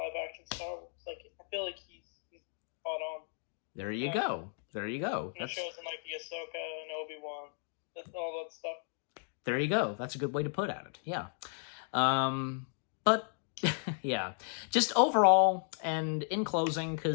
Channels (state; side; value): silent; right; 55 dB below the other